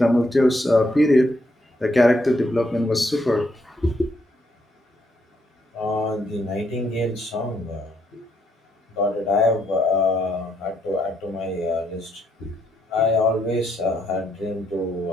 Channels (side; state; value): both; normal; correlation 0.75